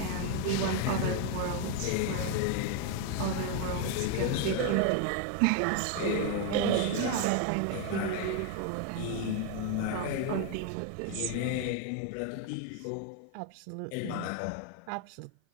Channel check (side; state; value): both; different; correlation 0.01